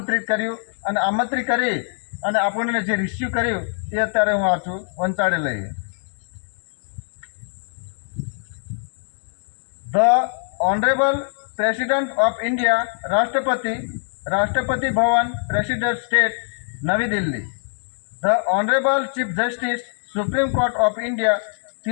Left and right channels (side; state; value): right; silent; digital silence